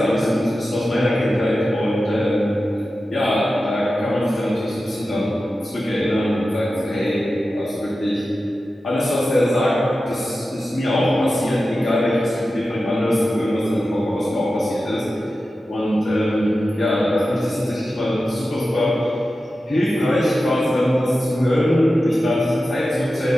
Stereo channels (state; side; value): normal; both; correlation 0.93